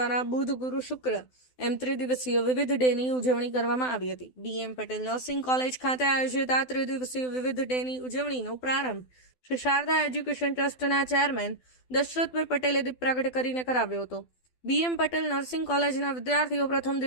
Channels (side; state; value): right; late; 12 ms